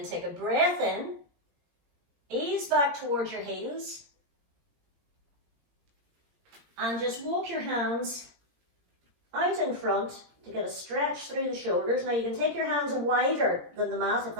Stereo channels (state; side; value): late; left; 17 ms